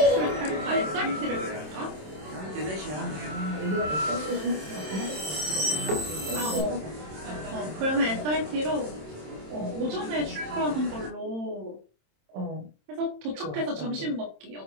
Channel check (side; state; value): left; late; 27 ms